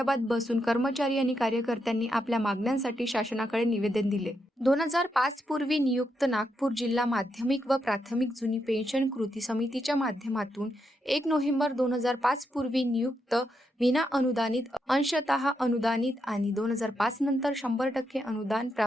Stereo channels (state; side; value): normal; both; correlation 0.82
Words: बसून कर्मचारी आणि कार्यकर्त्यांनी आपल्या मागण्यांसाठी शासनाकडे निवेदन दिले. 2005 पूर्वी नियुक्त नागपूर जिल्हा माध्यमिक व प्राथमिक जुनी पेन्शन कृती समितीच्या माध्यमातून 1 नोव्हेंबर 2005 पूर्वी नियुक्त विना अनुदानित, अंशतः अनुदानित आणि 2005 नंतर 100% अनुदान